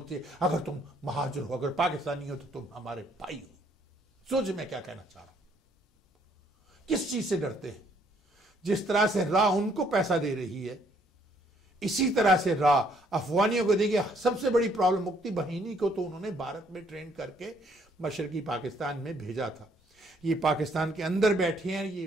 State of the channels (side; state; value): both; normal; correlation 0.66